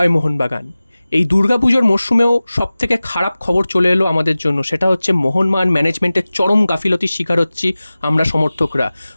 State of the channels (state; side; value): inverted; both; correlation -0.97